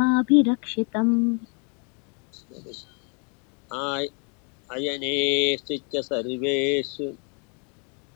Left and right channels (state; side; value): quieter; right; 36.8 dB